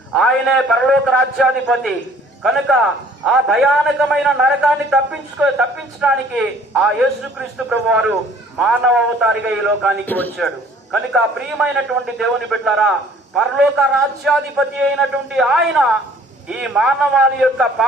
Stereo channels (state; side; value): normal; both; correlation 0.55